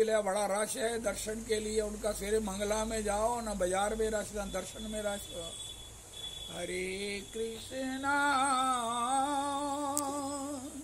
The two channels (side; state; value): both; identical; correlation 1.00